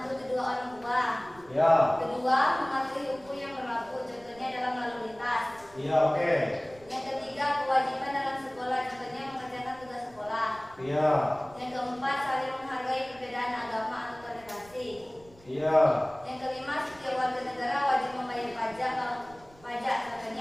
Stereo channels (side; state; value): right; noise; rumble, 25 dB below the sound